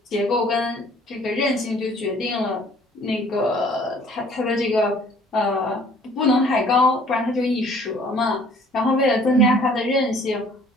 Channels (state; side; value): normal; both; correlation 0.55